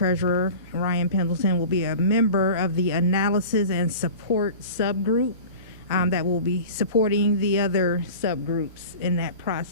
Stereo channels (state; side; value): inverted; both; correlation -0.37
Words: Ryan Pendleton, will be a member of the analysis and support subgroup that will be supporting the other subgroups in that